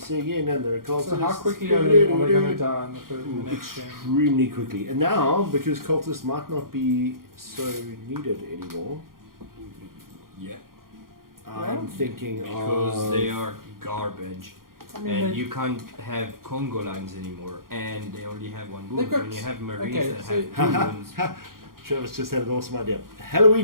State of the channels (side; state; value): left; late; 0.92 ms